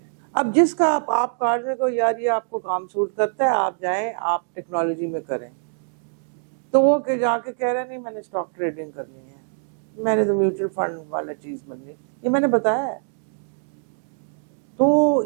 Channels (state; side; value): silent; left; 63 dB below the other